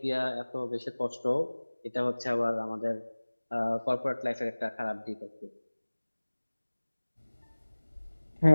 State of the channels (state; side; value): inverted; both; correlation -1.00